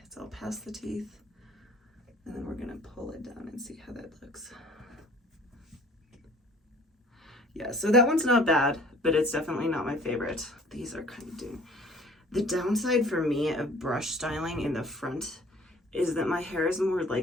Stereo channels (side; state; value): both; normal; correlation 0.51